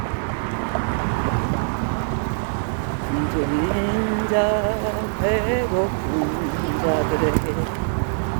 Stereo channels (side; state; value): left; silent; digital silence